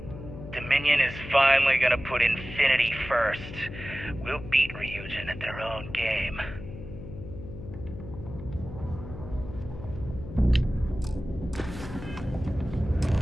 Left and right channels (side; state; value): left; noise; hum, 11 dB below the sound